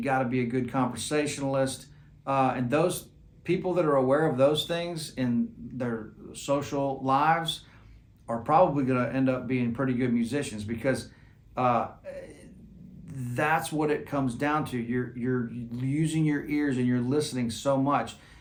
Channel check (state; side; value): identical; both; correlation 1.00